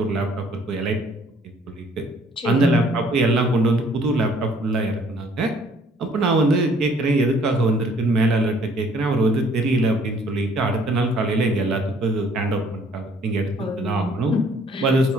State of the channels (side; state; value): both; normal; correlation 0.60